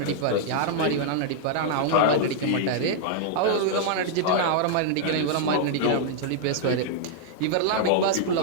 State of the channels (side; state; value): both; different; correlation -0.01